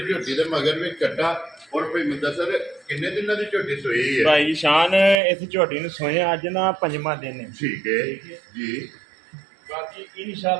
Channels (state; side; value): drops out; left; at 5.2 s